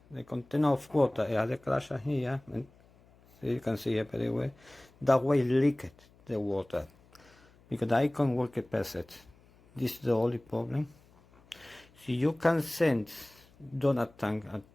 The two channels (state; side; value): noise; left; hum, 28 dB below the sound